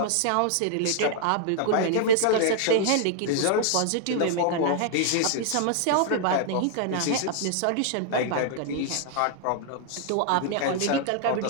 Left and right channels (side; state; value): both; different; correlation 0.00